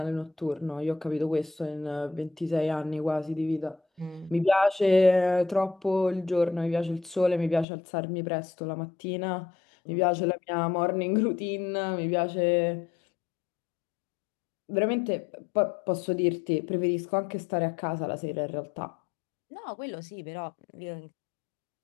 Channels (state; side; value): drops out; right; at 7.7 s